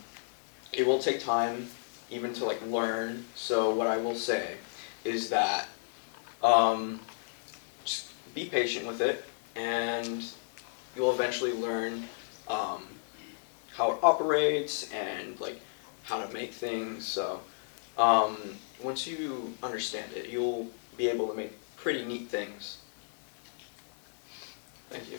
it will take time even to like learn. So what I will say is that just be patient with it, and you'll eventually learn how it operates and like how to make things. So once you understand it, you'll be able to make pretty neat things. Thank you.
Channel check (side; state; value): right; silent; digital silence